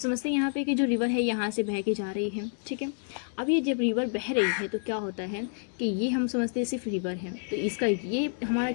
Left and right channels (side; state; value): right; silent; digital silence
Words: हैं यहाँ पे कि जो रिवर है यहाँ से बह के जा रही है, ठीक है। अब ये जब रिवर बह रही है तो क्या होता है कि ये हम समझते हैं सिर्फ रिवर है, तो इसका ये हमारा